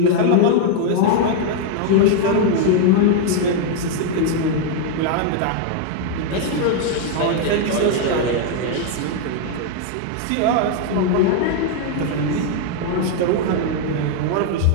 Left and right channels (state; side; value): different; both; correlation 0.00